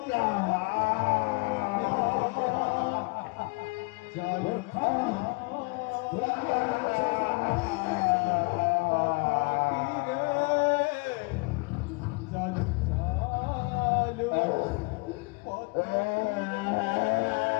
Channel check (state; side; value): quieter; right; 29.6 dB